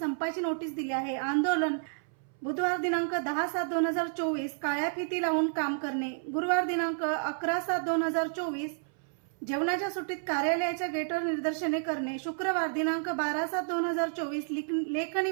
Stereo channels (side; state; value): left; silent; 57 dB below the other